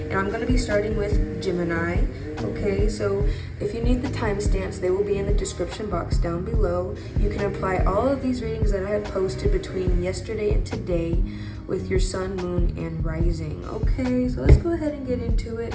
I'm going to be starting with Gemini. Okay, so if you need the timestamps, they will be in the description box down below. You can apply all of these readings that I have posted between yesterday and today with your sun, moon, and rising. Okay, so let's go ahead and get into it.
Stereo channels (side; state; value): both; identical; correlation 1.00